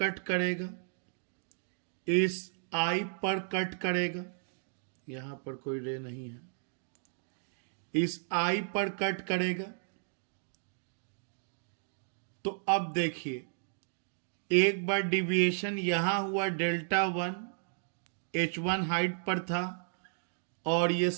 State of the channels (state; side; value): silent; left; digital silence